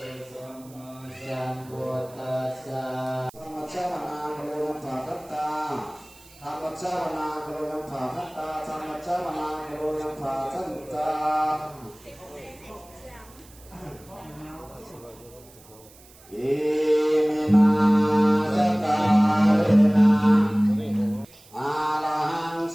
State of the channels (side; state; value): right; noise; hiss, 24 dB below the sound